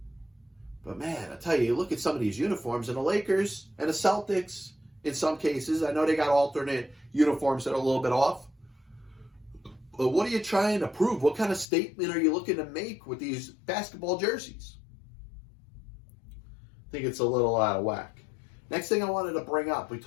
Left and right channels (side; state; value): right; drops out; at 11.7 s